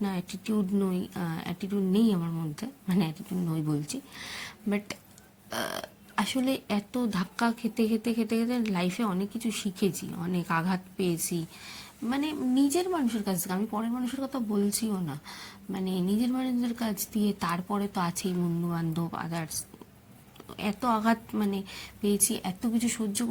না, অ্যাটিটিউড নেই আমার মধ্যে, মানে অ্যাটিটিউড নই বলছি। বাট আসলে এত ধাক্কা খেতে খেতে খেতে খেতে লাইফে অনেক কিছু শিখেছি, অনেক আঘাত পেয়েছি। মানে নিজের মানুষের কাছ থেকে, আমি পরের মানুষের কথা বলছিও না, মানে নিজের মানুষের কাছ দিয়ে। তারপরে তো আছেই বন্ধু বান্ধব, আদার্স। এত আঘাত মানে পেয়েছি, এত কিছু সহ্য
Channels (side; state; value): both; identical; correlation 1.00